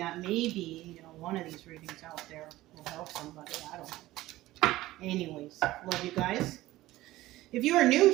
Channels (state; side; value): quieter; left; 16.8 dB